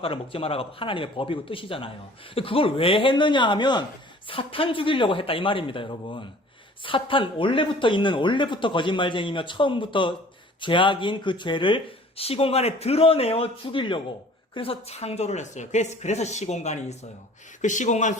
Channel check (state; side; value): normal; both; correlation 0.50